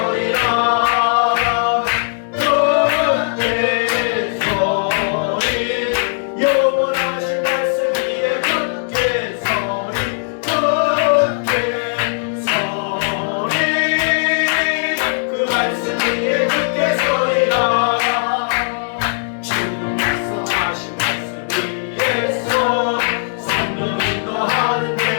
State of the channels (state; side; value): silent; right; digital silence